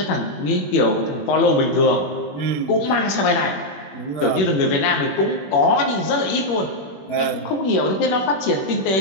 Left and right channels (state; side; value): late; right; 21 ms